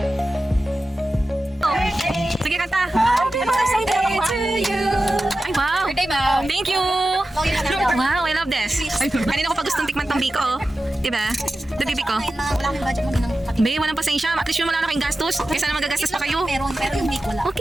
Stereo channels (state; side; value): normal; both; correlation 0.93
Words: Sige, kanta. Happy birthday to you. Ay, wow. Birthday, ma'am. Thank you. Wow, I love this. Kanina ko pa gustong tikman tong biko. Diba? The bibi ko. Wala akong budget mo din ng pati. Be, walang pasensya. At least yung wala na kayong gastos. Kaysa na magagastos pa kayo. Pero yung week wala.